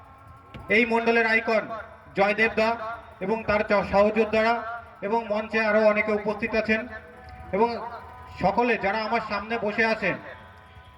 এই মণ্ডলের আইকন জয়দেব দা এবং তার সহযোদ্ধারা, এবং মঞ্চে আরও অনেকে উপস্থিত আছেন। এবং সকলে যারা আমার সামনে বসে আছেন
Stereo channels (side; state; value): both; identical; correlation 1.00